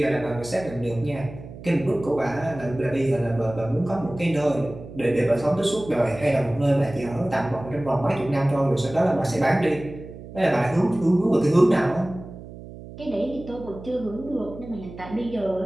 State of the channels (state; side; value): noise; right; hum, 15 dB below the sound